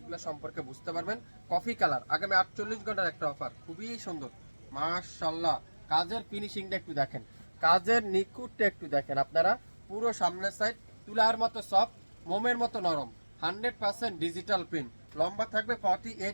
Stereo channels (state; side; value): inverted; both; correlation -1.00